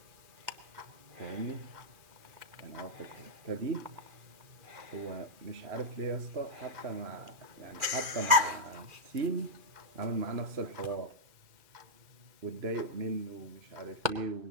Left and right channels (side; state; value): left; late; 2.4 ms